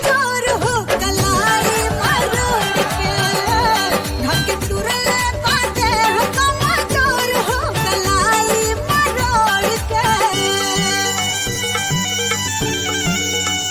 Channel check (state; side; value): identical; both; correlation 1.00